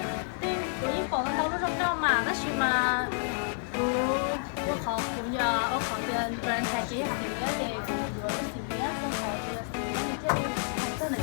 tụi ít bỏ tàu lúc trong đó mà nó chỉ mà, tôi khó cũng giờ ở khó tiền brand thay chỉ học thì cái gì cũng vừa cái gì á, tôi khó tiền thì cái gì tôi là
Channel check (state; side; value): silent; right; 58 dB below the other